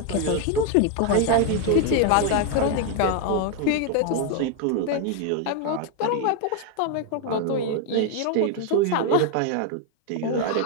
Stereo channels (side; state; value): both; different; correlation 0.00